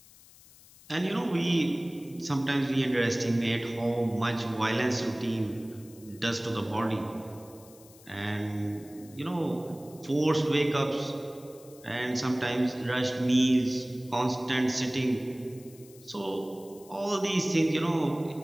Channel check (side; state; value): left; noise; hiss, 23 dB below the sound